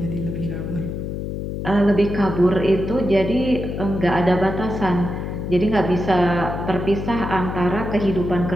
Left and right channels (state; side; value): noise; left; hum, 5 dB below the sound